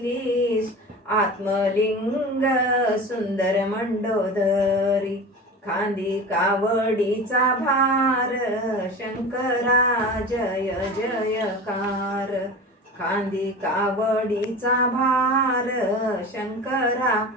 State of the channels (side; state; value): both; normal; correlation 0.32